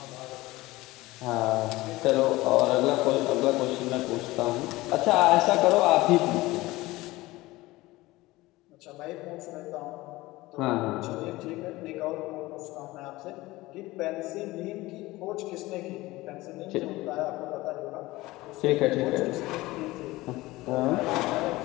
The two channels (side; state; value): right; quieter; 19.4 dB